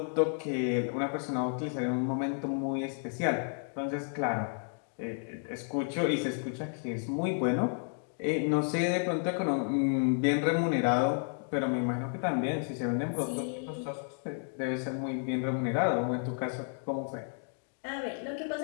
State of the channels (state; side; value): silent; right; 57 dB below the other